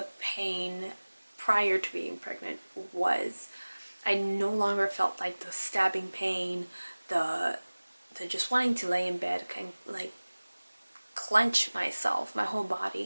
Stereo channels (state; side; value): inverted; both; correlation -1.00